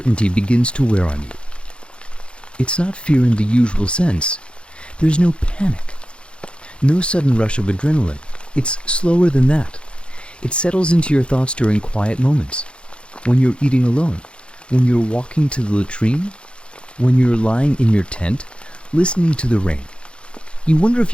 begins to wear on you. It's not fear in the usual sense. There's no panic. No sudden rush of adrenaline. It's slower than that. It settles into your thoughts during quiet moments. When you're eating alone. When you're walking to the latrine. When you're lying in your tent, listening to the rain. You wonder if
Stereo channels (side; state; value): right; late; 0.057 ms